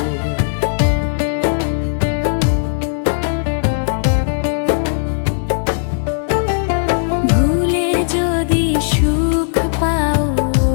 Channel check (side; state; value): right; silent; digital silence